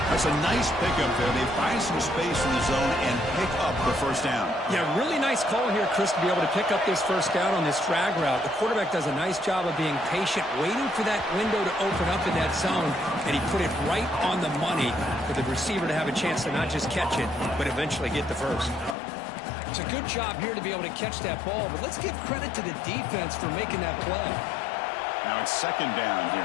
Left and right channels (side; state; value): right; drops out; at 18.9 s